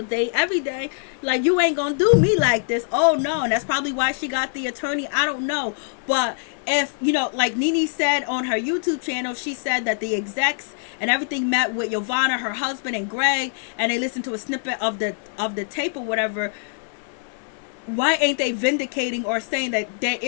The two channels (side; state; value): right; silent; 63 dB below the other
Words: day, every day. Like, you ain't gonna do me like this. Oh no. And that's probably why she got the attorney. I don't know. But if, you know, like Nene said on her YouTube channel, she said that the execs and everything met with Yovana, her husband, and Greg, and they listened to a snippet of the tape or whatever. Why ain't they vindicating or saying that there